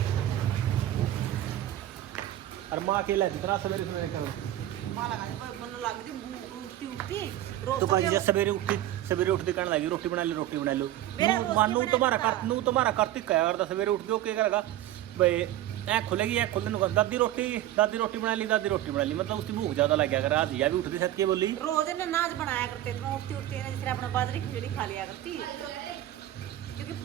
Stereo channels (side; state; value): left; quieter; 13.6 dB